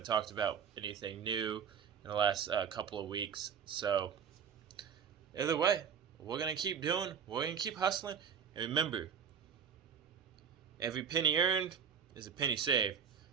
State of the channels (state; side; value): quieter; left; 7.5 dB